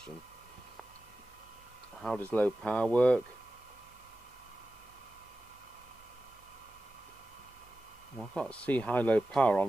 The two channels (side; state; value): both; normal; correlation 0.94